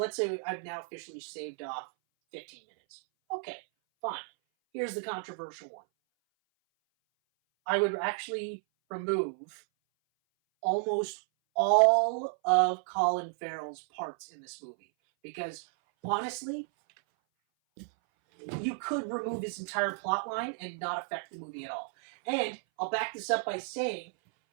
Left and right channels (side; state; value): left; silent; 56 dB below the other